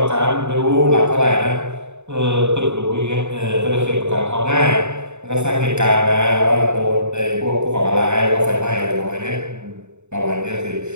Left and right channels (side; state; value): left; late; 0.82 ms